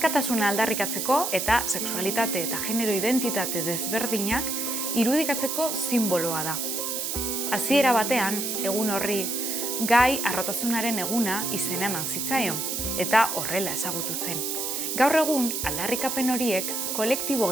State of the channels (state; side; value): noise; right; hiss, 2 dB below the sound